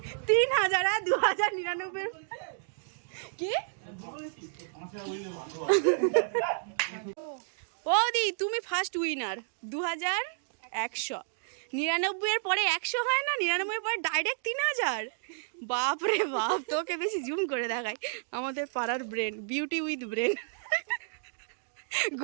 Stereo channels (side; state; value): left; silent; digital silence